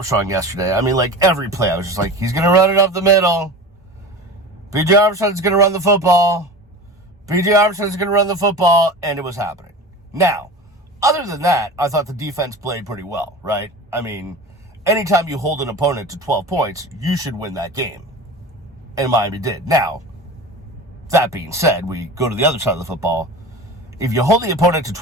yesterday, I mean, like, every play, I was just like, he's going to run it up the middle. B.J. Armstrong's going to run the football. B.J. Armstrong's going to run the football, and it was happening. Now, other than that, I thought the defense played pretty well, right? I mean, anytime you hold an opponent to 12 points, you should win that game. And Miami did. Now, that being said, we go to the other side of the football. If you hold the opponent to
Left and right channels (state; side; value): normal; both; correlation 0.33